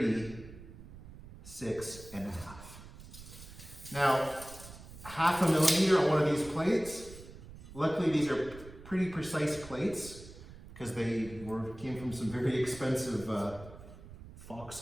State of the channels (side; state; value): right; noise; rumble, 16 dB below the sound